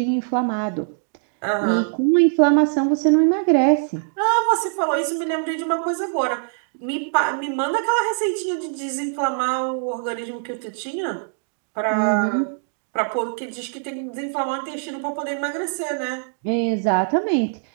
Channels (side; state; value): left; silent; digital silence